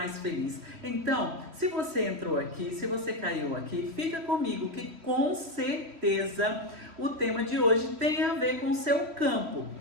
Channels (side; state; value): left; late; 3.1 ms